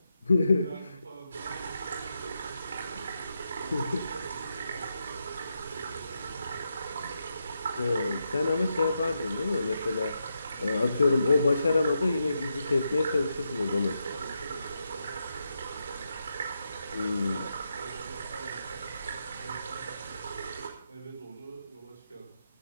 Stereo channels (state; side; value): inverted; both; correlation -0.84